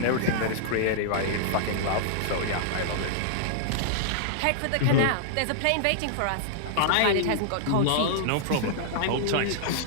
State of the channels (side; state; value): both; different; correlation -0.01